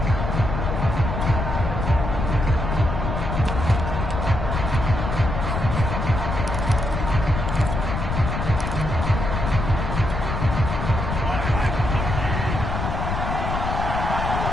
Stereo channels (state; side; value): noise; left; rumble, 2 dB below the sound